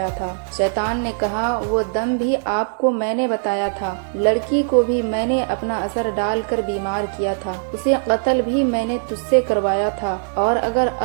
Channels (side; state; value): left; silent; 61 dB below the other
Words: تھا۔ شیطان نے کہا، وہ دم بھی آپ کو میں نے بتایا تھا، لڑکی کو بھی میں نے اپنا اثر ڈال کر بیمار کیا تھا، اسے قتل بھی میں نے تجھ سے کروایا تھا، اور اگر